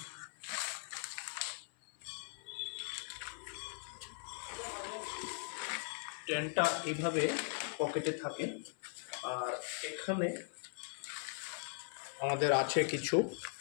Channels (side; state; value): right; silent; 51 dB below the other